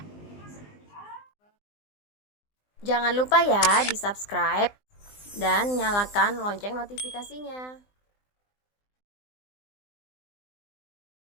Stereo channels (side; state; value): right; late; 20 ms